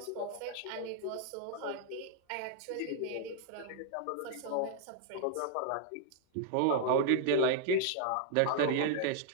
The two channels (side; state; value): both; different; correlation 0.00